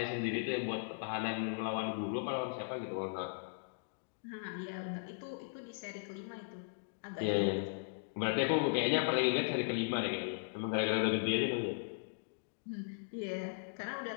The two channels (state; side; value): silent; right; digital silence